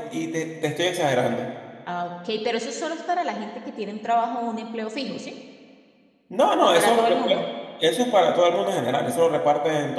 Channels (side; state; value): both; identical; correlation 1.00